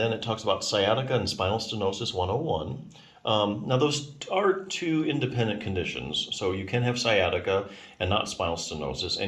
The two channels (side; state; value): both; identical; correlation 1.00